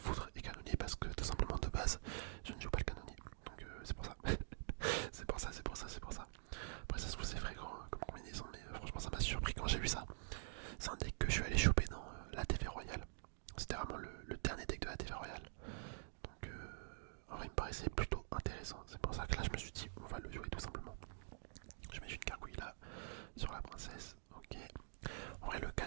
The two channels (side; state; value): left; silent; digital silence